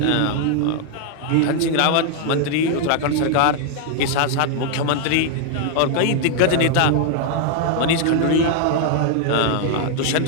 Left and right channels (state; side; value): different; both; correlation 0.00